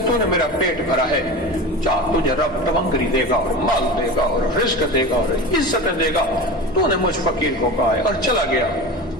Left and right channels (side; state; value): both; normal; correlation 0.29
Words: मेरा पेट भरा है, चाह तुझे रब तवंगरी देगा और माल देगा और रिस्क देगा और इज्जतें देगा, तूने मुझ फकीर को कहा है। और चला गया।